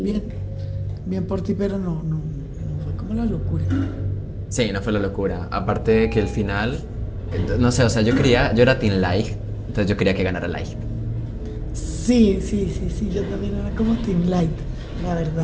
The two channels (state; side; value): identical; both; correlation 1.00